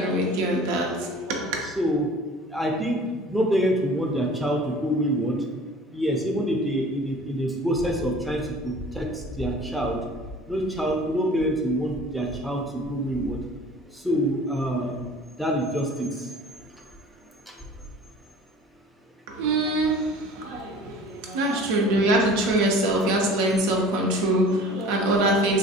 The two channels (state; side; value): normal; both; correlation 0.45